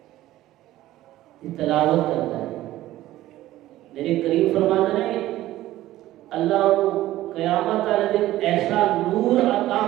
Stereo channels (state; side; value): quieter; left; 15.1 dB